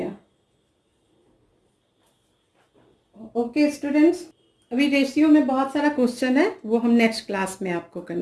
ओके स्टूडेंट्स, अभी रेशियो में बहुत सारा क्वेश्चन है, वो हम नेक्स्ट क्लास में आपको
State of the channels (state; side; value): identical; both; correlation 1.00